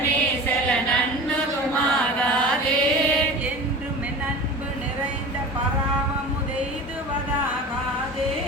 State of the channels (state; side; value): normal; both; correlation 0.35